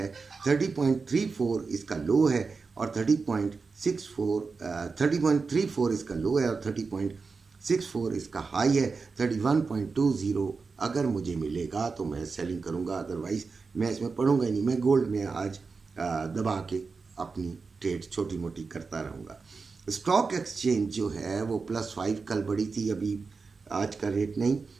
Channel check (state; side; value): quieter; left; 4.6 dB